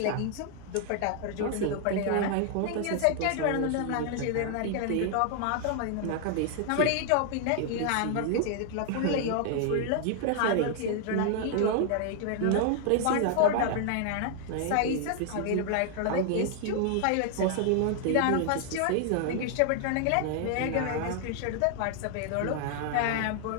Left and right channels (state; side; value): different; both; correlation 0.00